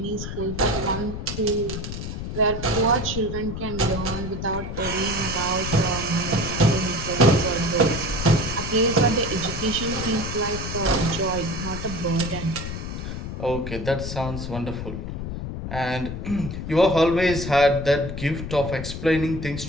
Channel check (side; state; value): left; noise; rumble, 6 dB below the sound